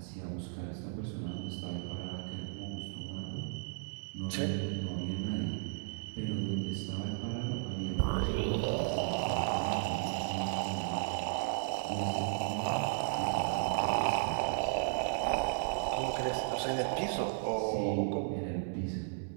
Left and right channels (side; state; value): left; silent; digital silence